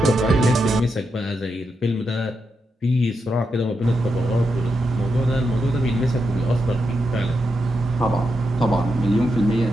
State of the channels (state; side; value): normal; both; correlation 0.84